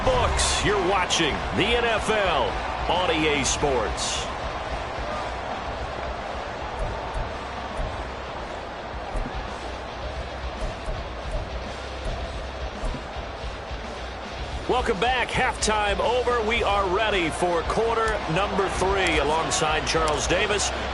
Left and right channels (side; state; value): both; identical; correlation 1.00